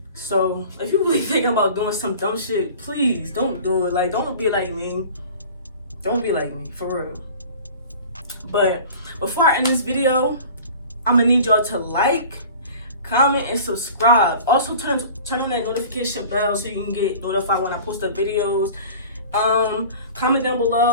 So if you're really thinking about doing some dumb shit, please don't do it. Like, don't be like me. Don't be like me, for real. But before I end this video, I'm gonna need y'all to like, comment, and subscribe. Also turn on that notification bell so you can get notified when I post up videos. Comment down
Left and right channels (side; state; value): both; inverted; correlation -0.42